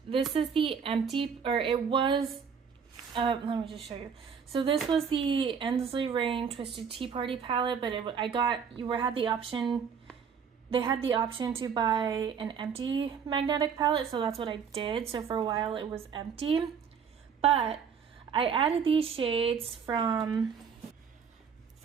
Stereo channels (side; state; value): left; quieter; 6.7 dB